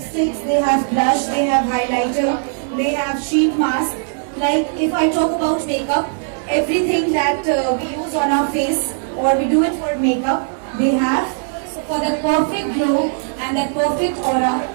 they have blush, they have highlighter, they have sheet mask. Like if I talk about makeup, everything that we use on our face or we do it for makeup, they have. So for that perfect glow and that perfect aura,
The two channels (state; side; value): silent; left; 67 dB below the other